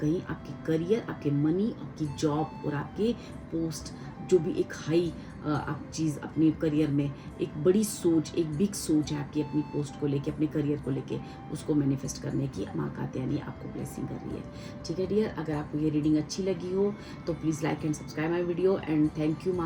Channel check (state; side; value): identical; both; correlation 1.00